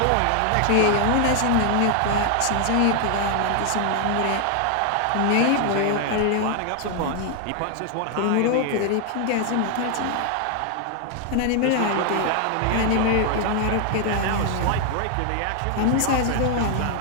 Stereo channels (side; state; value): both; different; correlation 0.00